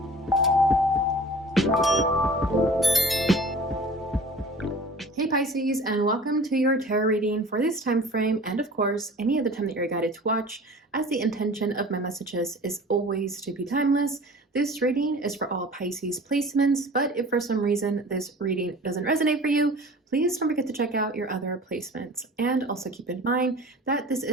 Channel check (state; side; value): normal; both; correlation 0.43